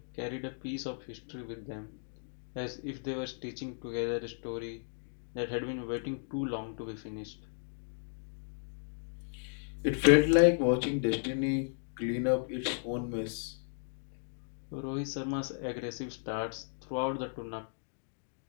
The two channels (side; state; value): right; silent; digital silence